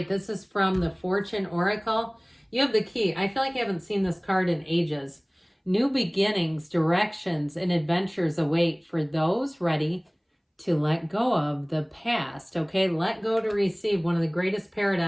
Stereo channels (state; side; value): identical; both; correlation 1.00